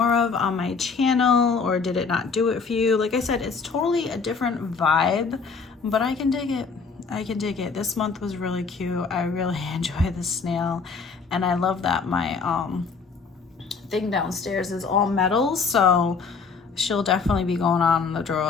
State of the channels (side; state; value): right; quieter; 5.1 dB